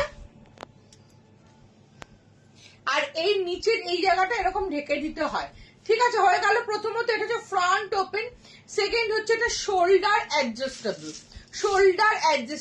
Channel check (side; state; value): both; identical; correlation 1.00